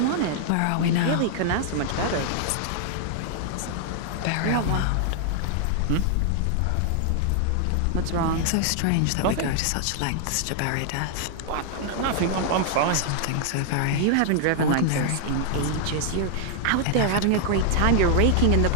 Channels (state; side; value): different; both; correlation -0.01